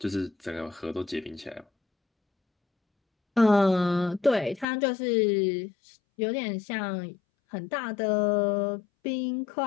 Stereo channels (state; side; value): drops out; right; at 4.7 s